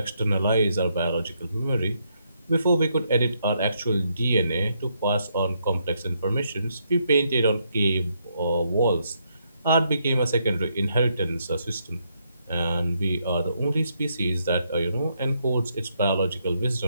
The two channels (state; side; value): inverted; both; correlation -0.76